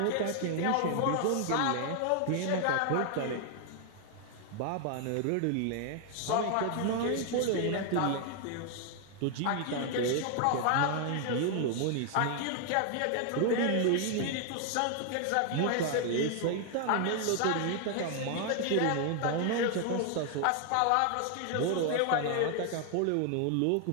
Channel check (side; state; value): both; different; correlation 0.00